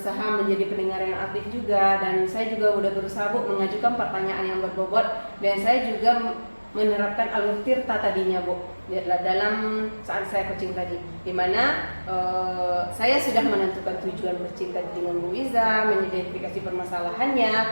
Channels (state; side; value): inverted; both; correlation -1.00